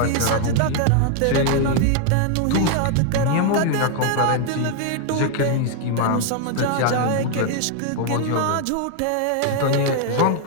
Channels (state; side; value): different; both; correlation 0.00